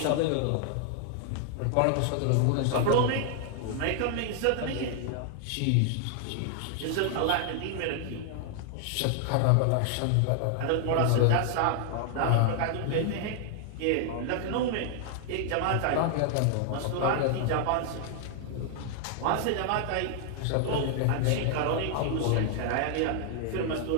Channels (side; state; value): both; different; correlation 0.00